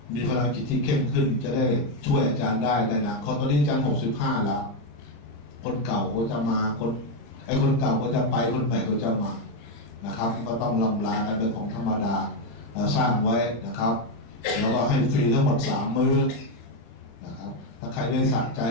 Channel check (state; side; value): late; right; 36 ms